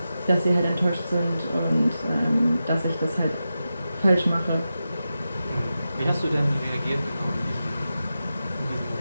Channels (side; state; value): both; inverted; correlation -0.91